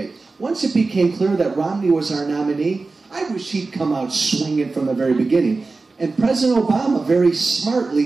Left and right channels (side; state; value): left; quieter; 3.8 dB